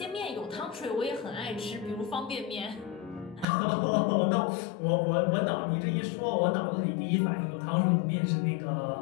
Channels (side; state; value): right; drops out; at 3.5 s